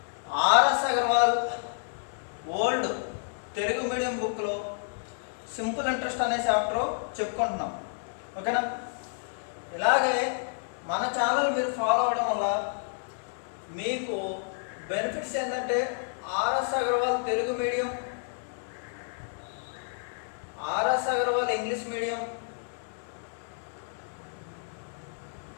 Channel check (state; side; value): silent; right; 58 dB below the other